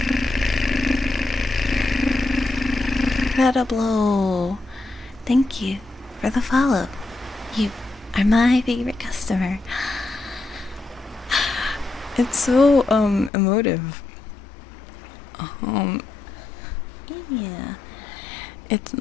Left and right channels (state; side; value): drops out; right; at 13.3 s